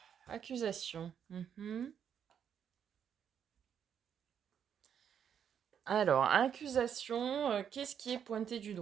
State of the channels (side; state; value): left; quieter; 8.3 dB